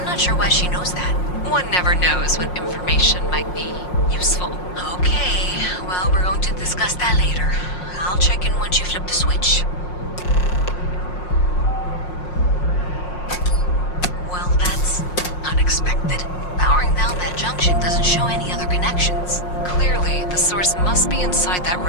not sure why she knows that. One never knows when information might be useful. Okay, well, we're going to discuss that later. I'll check in once you flip the switch. Well, that's unexpected. Powering down that junction doesn't show any other connections. Clearly, the source must be inside that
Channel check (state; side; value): late; right; 5.6 ms